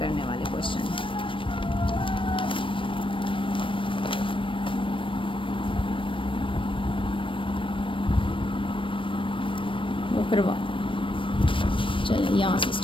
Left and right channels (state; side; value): late; right; 0.25 ms